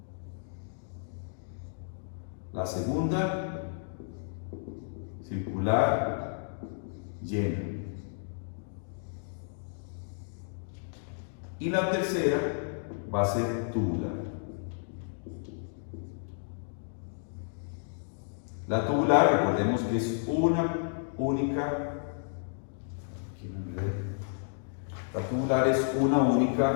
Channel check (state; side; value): silent; right; digital silence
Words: La segunda, circular, llena. Y la tercera va a ser tubular. La tubular, recordemos que es una única, la tubular es una